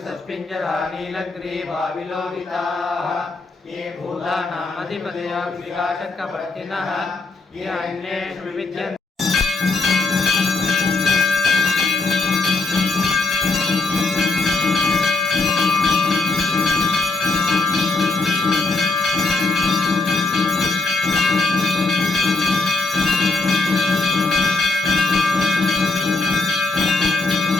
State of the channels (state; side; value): quieter; right; 3.6 dB